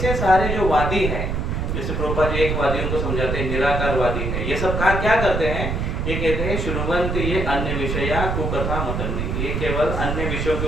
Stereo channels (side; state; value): right; noise; rumble, 1 dB below the sound